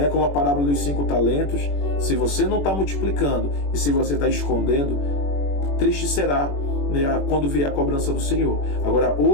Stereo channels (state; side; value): late; right; 21 ms